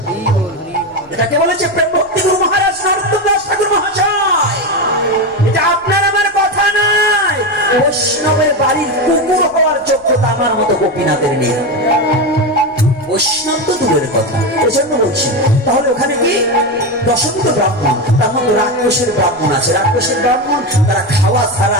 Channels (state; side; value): noise; left; rumble, 29 dB below the sound